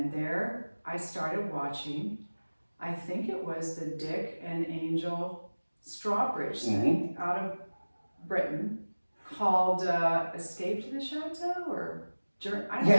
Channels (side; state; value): both; inverted; correlation -1.00